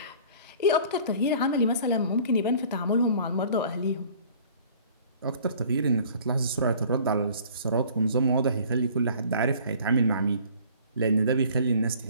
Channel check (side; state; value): both; inverted; correlation -0.51